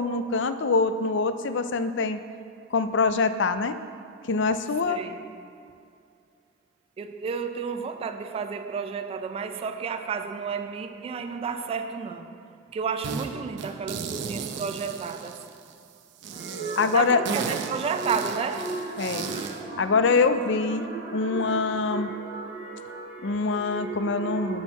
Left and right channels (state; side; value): normal; both; correlation -0.13